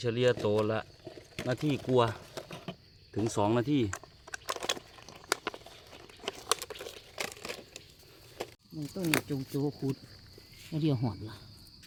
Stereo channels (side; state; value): both; identical; correlation 1.00